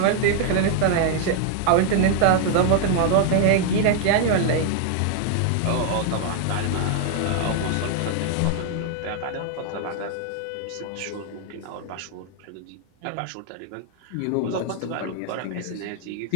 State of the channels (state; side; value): different; both; correlation 0.00